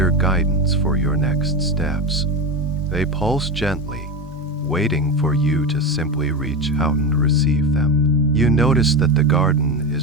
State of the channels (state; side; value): normal; both; correlation 0.20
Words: guidance for your next steps. They pulse gently, waiting for you to simply reach out and receive them. You notice that the garden